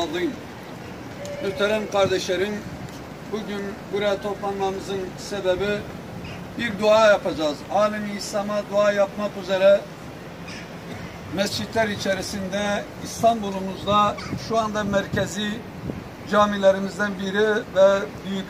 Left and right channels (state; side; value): identical; both; correlation 1.00